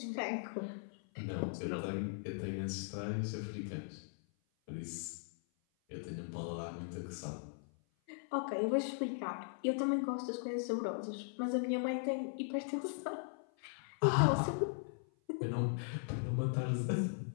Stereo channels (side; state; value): right; silent; 52 dB below the other